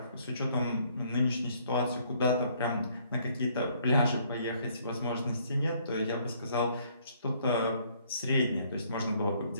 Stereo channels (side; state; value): both; inverted; correlation -0.64